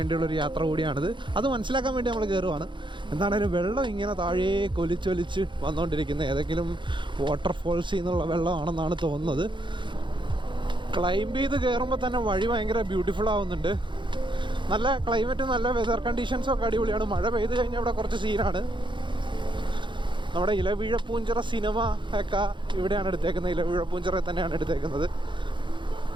യാത്ര കൂടിയാണിത്. അത് മനസ്സിലാക്കാൻ വേണ്ടി നമ്മൾ കയറുവാണ്. എന്താണേലും വെള്ളം ഇങ്ങനെ താഴേ കൊലിച്ചൊലിച്ച് വന്നുകൊണ്ടിരിക്കുന്നത് ഏതെങ്കിലും വാട്ടർഫോൾസിൽ നിന്നുള്ള വെള്ളമാണെന്നാണ് തോന്നുന്നത്. ക്ലൈംബ് ചെയ്ത് കയറുമ്പോൾ തന്നെ വഴി ഭയങ്കര ബ്യൂട്ടിഫുൾ ആവുന്നുണ്ട്. നല്ല ക്ലൈമറ്റ്, നല്ല വെതർ കണ്ടീഷൻസൊക്കെ അടിപൊളിയാണ്. മഴ പെയ്ത് കഴിഞ്ഞാൽ ഇവിടെ കുറച്ച് സീനാണ്. നമ്മുടെ ഇലവീഴ പൂഞ്ചിറ സിനിമ ഒക്കെ ഇവിടെയാണ് എടുത്തേക്കുന്നത്. ഇലവീഴ പൂഞ്ചിറ തന്നെയാണ് എടുത്തേക്കുന്നത്.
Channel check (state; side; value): late; left; 0.23 ms